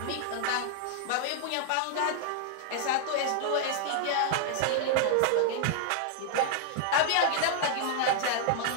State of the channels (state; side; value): different; both; correlation -0.01